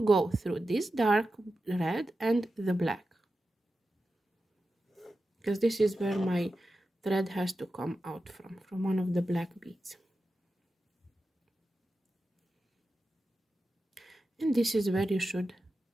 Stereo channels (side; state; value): both; normal; correlation 0.92